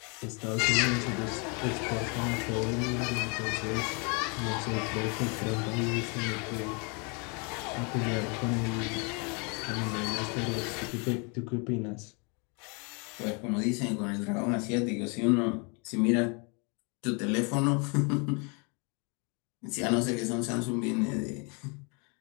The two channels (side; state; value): right; quieter; 33.9 dB